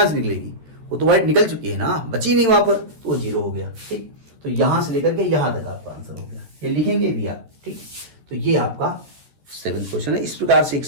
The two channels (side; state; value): left; late; 13 ms